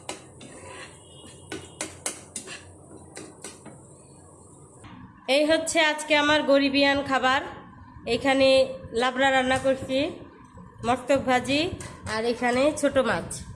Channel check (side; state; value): both; identical; correlation 1.00